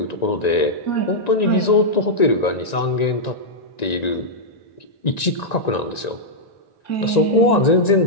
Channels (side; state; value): right; late; 1.9 ms